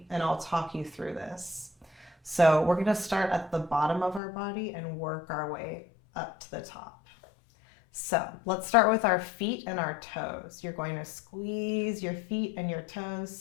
and I'll talk you through this. So we're going to start at the bottom of our body and work our way up to the top. So let's start with our feet and our toes. You're going to squeeze your feet and your toes.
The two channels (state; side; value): drops out; right; at 4.2 s